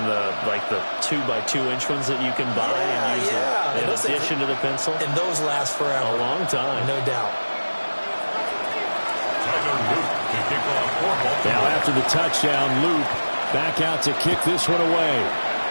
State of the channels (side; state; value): both; inverted; correlation -1.00